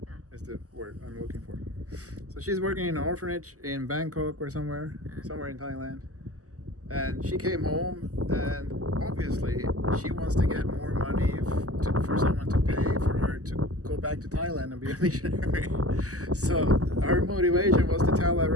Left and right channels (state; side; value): late; left; 0.66 ms